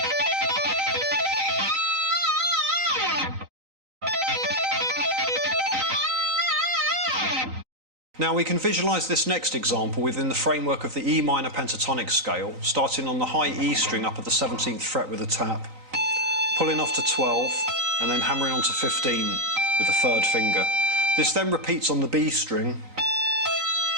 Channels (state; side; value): late; left; 3.9 ms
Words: Now we can visualise this next example within the framework of the E minor pentatonic scale, starting on the high E string up at the 17th fret with a tap, pulling off to 12 and then hammering onto 15 with the 3rd finger. This then repeats on the B string.